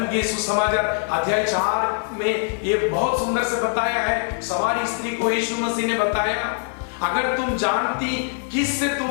के सुसमाचार अध्याय 4 में ये बहुत सुंदर से बताया है। समारी स्त्री को यीशु मसीह ने बताया, अगर तुम जानती किससे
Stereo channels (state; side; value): silent; right; 64 dB below the other